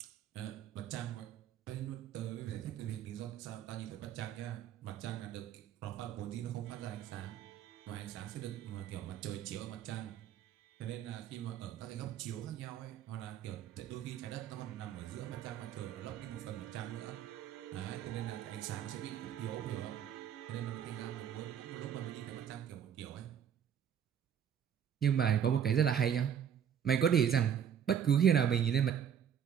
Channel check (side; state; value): left; quieter; 8.8 dB